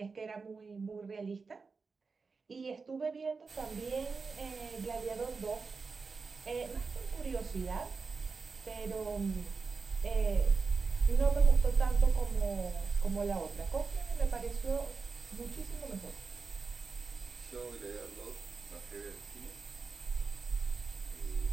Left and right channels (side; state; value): left; quieter; 4.6 dB